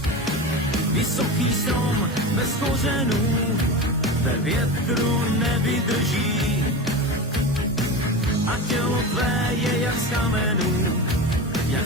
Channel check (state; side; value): normal; both; correlation 0.25